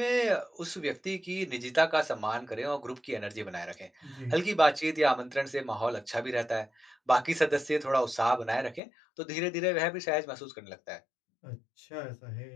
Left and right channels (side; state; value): right; drops out; at 8.8 s